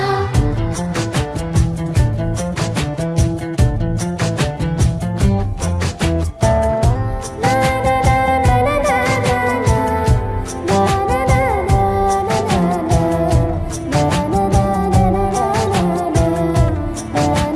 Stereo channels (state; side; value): identical; both; correlation 1.00